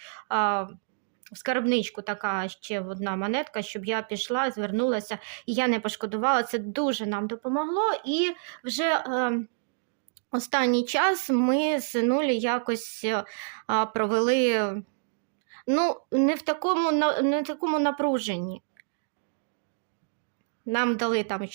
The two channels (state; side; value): silent; left; digital silence